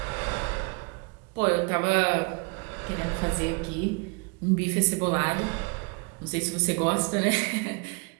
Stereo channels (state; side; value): quieter; left; 30.0 dB